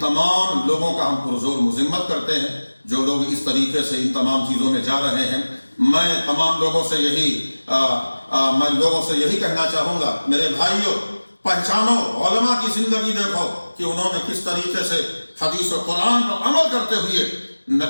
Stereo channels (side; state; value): both; inverted; correlation -1.00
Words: تمام لوگوں کا ہم پرزور مذمت کرتے ہیں جو لوگ اس طریقے سے ان تمام چیزوں میں جا رہے ہیں. میں تمام لوگوں سے یہی کہنا چاہوں گا، میرے بھائیوں پہچانو، علماء کی زندگی دیکھو کہ انہوں نے کس طریقے سے حدیث و قرآن پر عمل کرتے ہوئے